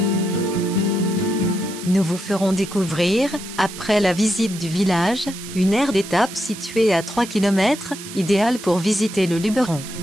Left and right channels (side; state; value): right; noise; hiss, 13 dB below the sound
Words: Nous vous ferons découvrir, après la visite du village, une aire d'étape située à 3 km, idéale pour visiter le Luberon.